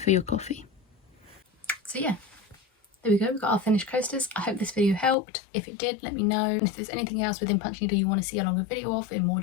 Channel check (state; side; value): drops out; right; at 5.2 s